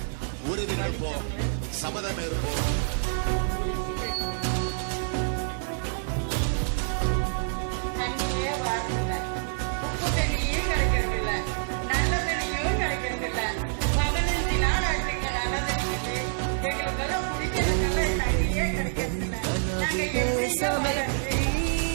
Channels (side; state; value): left; silent; digital silence